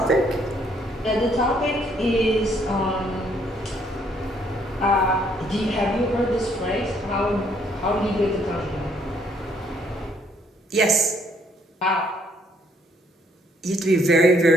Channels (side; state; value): both; normal; correlation 0.67